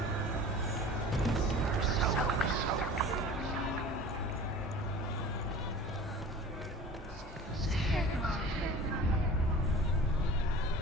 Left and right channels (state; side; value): normal; both; correlation 0.40